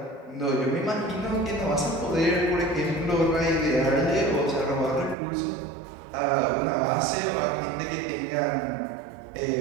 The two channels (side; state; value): left; drops out; at 5.2 s